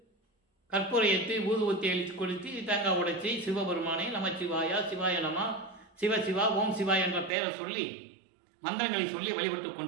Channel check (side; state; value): left; drops out; at 7.3 s